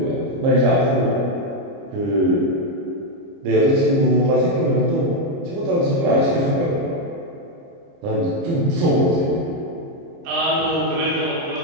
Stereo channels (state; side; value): late; left; 30 ms